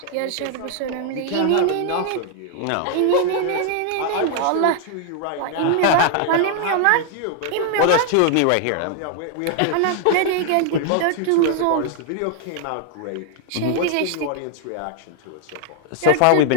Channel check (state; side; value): different; both; correlation 0.00